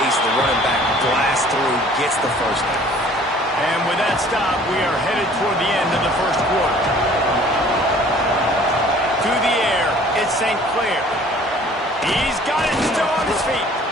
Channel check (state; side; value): normal; both; correlation 0.52